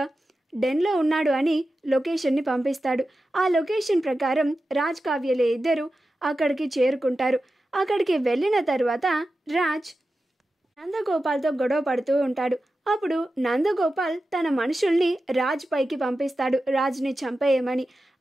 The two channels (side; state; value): both; normal; correlation 0.92